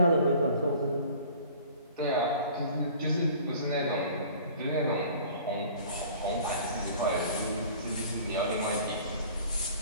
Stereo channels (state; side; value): inverted; both; correlation -0.48